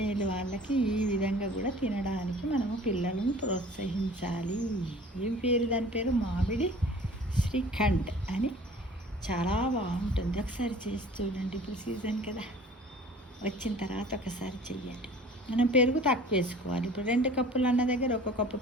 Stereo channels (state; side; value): normal; both; correlation 0.46